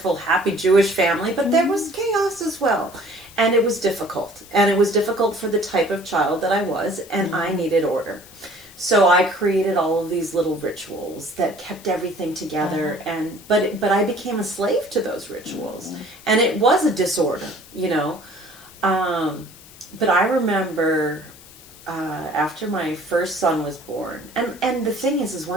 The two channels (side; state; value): left; noise; hiss, 21 dB below the sound